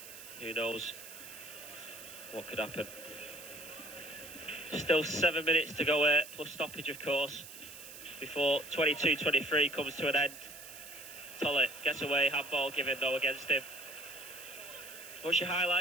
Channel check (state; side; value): noise; right; hiss, 14 dB below the sound